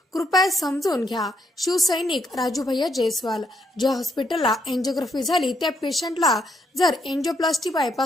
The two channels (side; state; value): both; normal; correlation 0.75